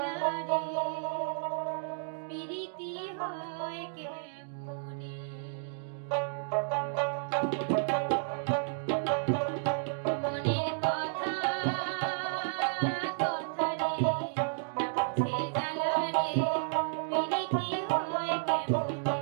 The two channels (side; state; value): left; silent; digital silence